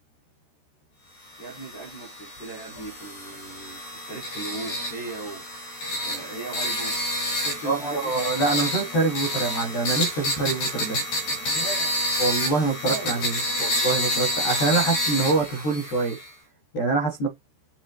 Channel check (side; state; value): right; late; 13 ms